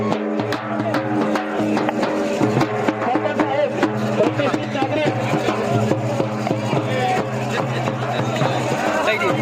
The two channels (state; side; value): identical; both; correlation 1.00